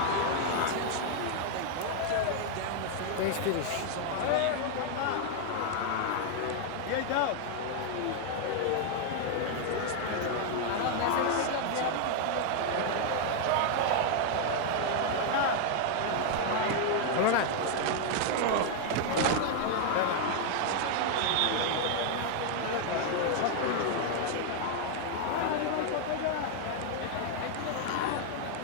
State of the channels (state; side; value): different; both; correlation 0.00